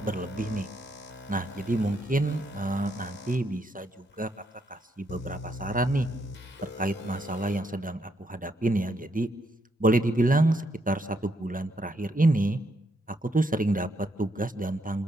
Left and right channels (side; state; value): both; normal; correlation 0.76